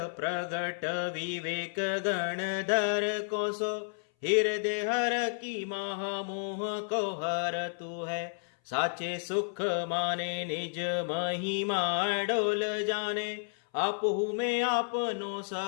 प्रगट विवेक गणधर को सो, हृदय हर की महामोह को हर तू है। साचे सुख माने निज महिमा डोल जाने, आपहु में आपनो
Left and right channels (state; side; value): silent; right; 57 dB below the other